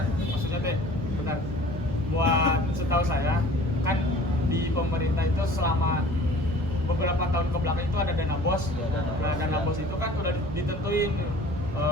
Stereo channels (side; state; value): both; normal; correlation 0.47